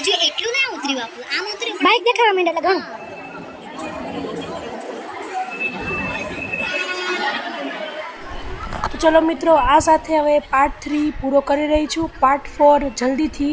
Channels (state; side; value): identical; both; correlation 1.00